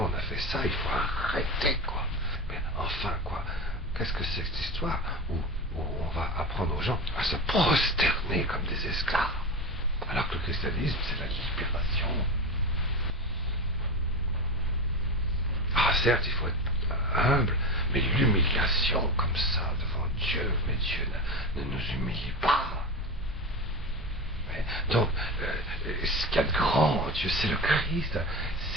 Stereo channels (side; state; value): both; normal; correlation 0.23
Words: on a fait ça, il faut arrêter, quoi. Mais enfin, quoi, qu'est-ce que c'est que cette histoire où on va apprendre aux gens à se prosterner comme des esclaves, alors que le christianisme c'est la libération. Ah certes, il faut être humble, mais l'humiliation comme ça devant Dieu, mais Dieu ne nous humilie pas. Donc, ce qu'il y a de grand, Dieu, c'est le Christ,